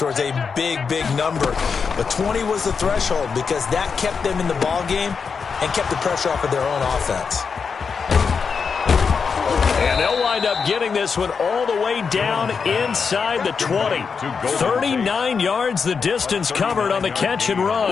a big, big number. But 20 was the threshold because that kept them in the ball game and kept the pressure off of their own offense. And they'll wind up getting this one all the way down inside the 20. 39 yards the distance covered on the catch and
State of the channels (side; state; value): right; quieter; 5.7 dB